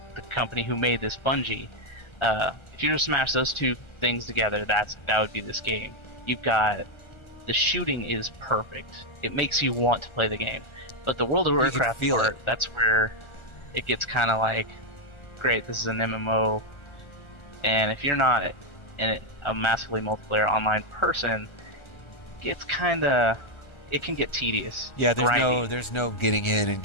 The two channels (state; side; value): late; right; 1.4 ms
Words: the company who made this, Bungie. If you were to smash those two things together, that would be this game. You've got the shooting is perfect. It makes you want to play the game. But the World of Warcraft part, that's where it gets kind of like, great, this is an MMO. And if you're not a massively multiplayer online person, it can get tedious. Yeah, there's no getting in and